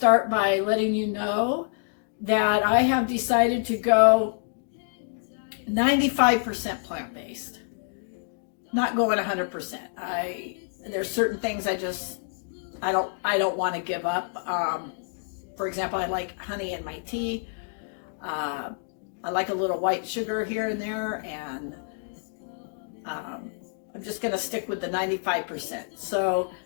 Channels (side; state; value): right; silent; digital silence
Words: by letting you know that I have decided to go 95% plant-based. Not going 100%. There's certain things I don't want to give up. For example, I like honey in my tea. I like a little white sugar here and there, and I'm just going to stick with the 95%. So